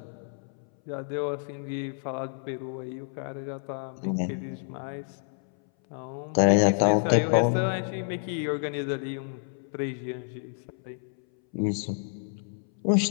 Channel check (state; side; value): silent; right; 59 dB below the other